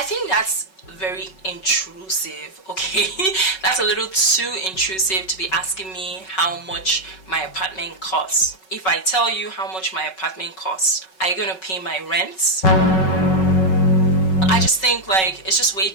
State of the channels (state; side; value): late; right; 5.3 ms